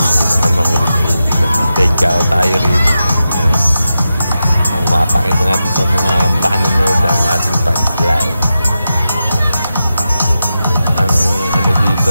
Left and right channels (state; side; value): inverted; both; correlation -0.90